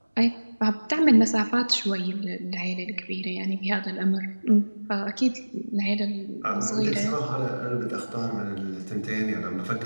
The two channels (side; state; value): both; inverted; correlation -1.00